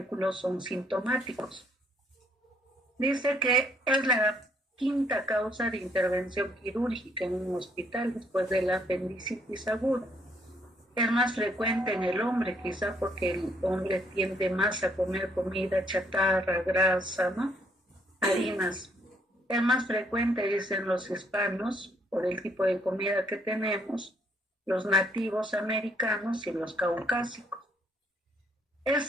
son sintomáticos. Dice que es la quinta causa de intervención quirúrgica en un hospital después de la apendicitis aguda. Es más frecuente en el hombre, quizá porque el hombre tiende más a comer comida chatarra, grasa, ¿no?, harinas. Es más frecuente, dicen los hispanos, por el tipo de comida que tenemos, los nativos americanos y los caucásicos.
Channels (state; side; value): normal; both; correlation 0.68